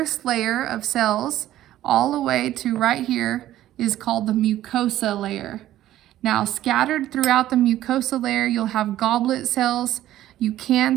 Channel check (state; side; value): quieter; left; 13.6 dB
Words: layer of cells, all the way to right here, is called the mucosa layer. Now, scattered throughout the mucosa layer, you'll have goblet cells. You can